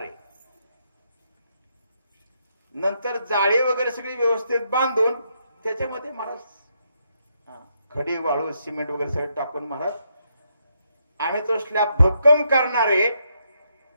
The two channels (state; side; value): inverted; both; correlation -0.78